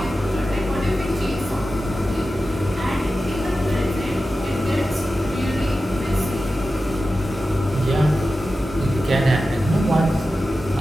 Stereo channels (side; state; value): both; normal; correlation 0.93